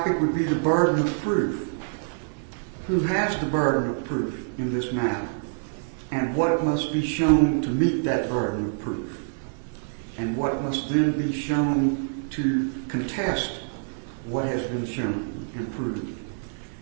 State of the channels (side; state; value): left; silent; digital silence